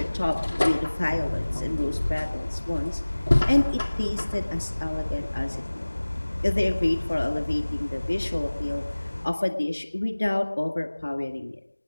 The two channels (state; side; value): inverted; both; correlation -1.00